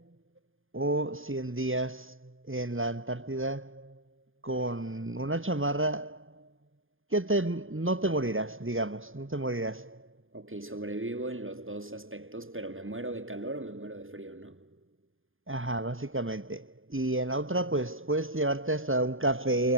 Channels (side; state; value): left; late; 0.59 ms